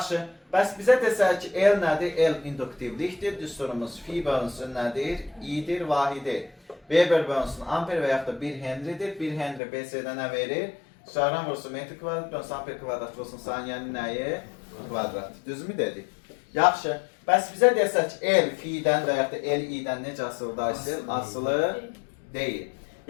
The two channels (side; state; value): right; drops out; at 9.6 s